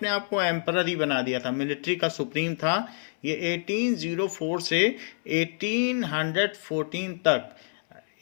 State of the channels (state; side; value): silent; right; 60 dB below the other